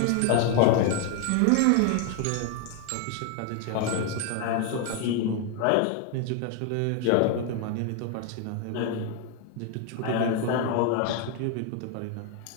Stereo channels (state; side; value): different; both; correlation 0.01